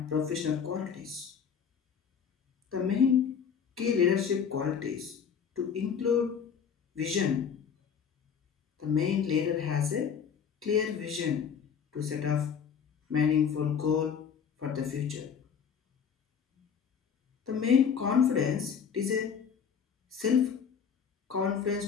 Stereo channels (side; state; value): right; quieter; 7.1 dB